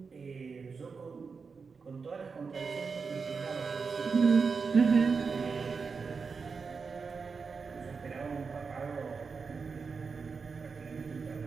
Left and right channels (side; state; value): left; quieter; 5.1 dB